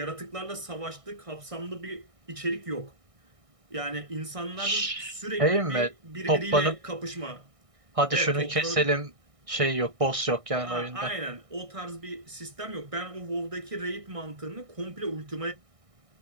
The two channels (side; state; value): left; late; 1.6 ms